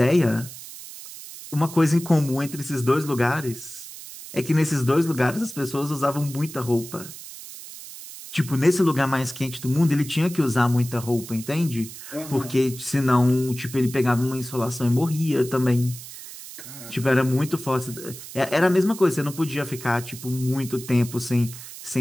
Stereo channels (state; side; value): noise; right; hiss, 14 dB below the sound